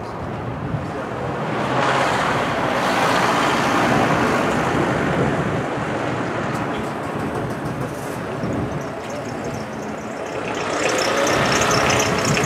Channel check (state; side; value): identical; both; correlation 1.00